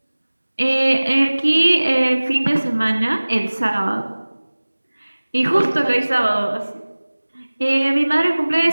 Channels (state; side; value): inverted; both; correlation -1.00